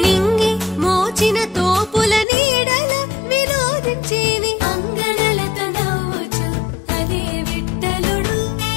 మోచిన తోపుల నీడల వినోదించి అంగనలతో నవ్వుచు అదే విఠలుడు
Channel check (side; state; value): right; drops out; at 2.2 s